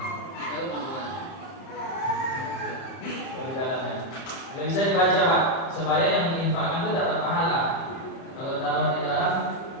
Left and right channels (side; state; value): right; late; 30 ms